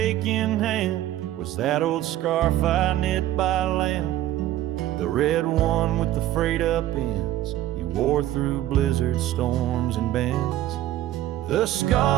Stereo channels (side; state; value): left; quieter; 13.8 dB